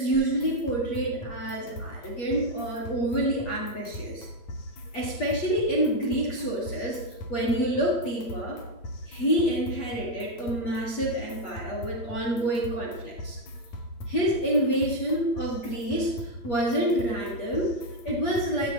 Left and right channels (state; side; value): late; right; 8.4 ms